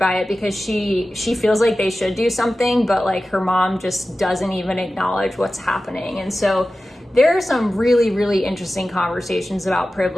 it because she feels like they should do something, but like her mom just doesn't even acknowledge what's happening. And so there are some really, really interesting conversations about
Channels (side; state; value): both; normal; correlation 0.95